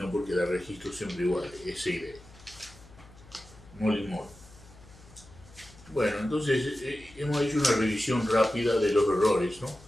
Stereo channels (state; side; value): noise; left; hum, 22 dB below the sound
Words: porque da registros siempre iguales, S y D. Molly Moore. Bueno, entonces hemos hecho una revisión rápida de los errores, ¿no?